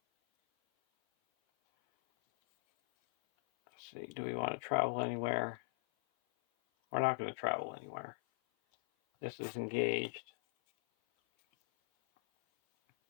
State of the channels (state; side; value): silent; right; 52 dB below the other